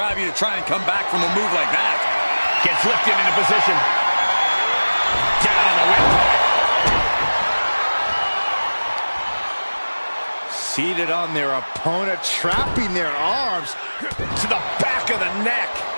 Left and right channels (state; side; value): inverted; both; correlation -1.00